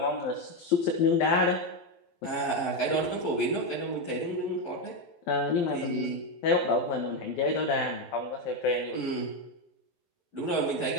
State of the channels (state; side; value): late; right; 12 ms